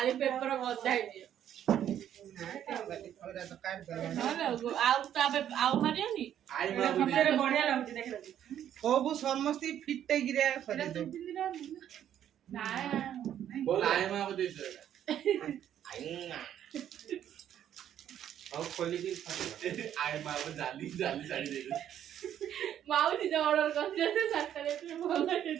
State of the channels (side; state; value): left; quieter; 10.4 dB